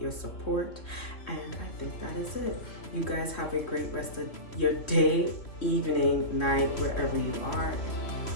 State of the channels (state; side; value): late; right; 2.9 ms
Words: support. And I think that is it. You guys have a great rest of your day, evening, night, wherever you are.